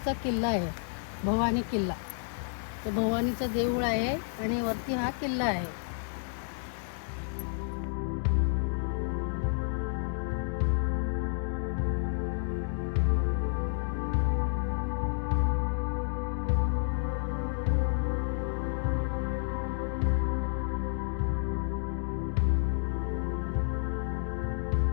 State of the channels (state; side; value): silent; right; digital silence